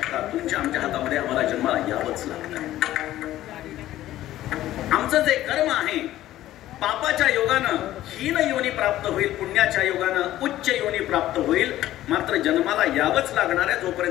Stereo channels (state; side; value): quieter; right; 14.1 dB